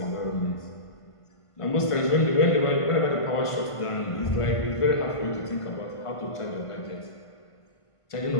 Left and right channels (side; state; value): right; late; 1.5 ms